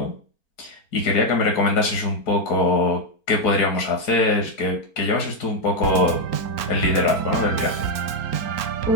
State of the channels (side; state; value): right; late; 4.4 ms